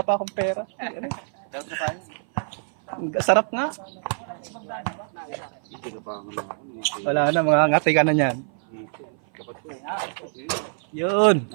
pa akong pera. Dapat na tayo. Sarap nga. Ito ka pa ako. Wala na, mga ngati ka na yan. Dapat ko. Yun.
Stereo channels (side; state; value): left; silent; 56 dB below the other